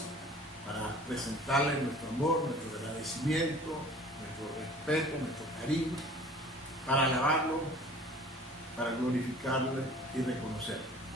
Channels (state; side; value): normal; both; correlation 0.47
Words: para presentarle nuestro amor, nuestro agradecimiento, nuestro respeto, nuestro cariño, para alabarlo, para glorificarle y reconocerle.